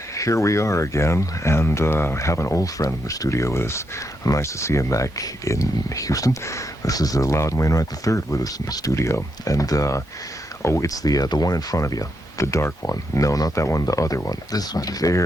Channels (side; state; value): both; normal; correlation 0.81